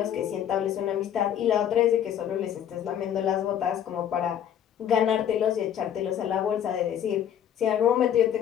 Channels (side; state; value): right; quieter; 9.8 dB